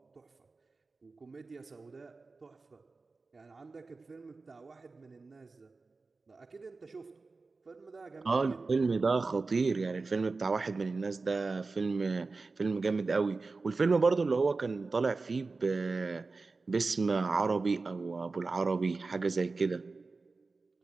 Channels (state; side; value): quieter; left; 3.9 dB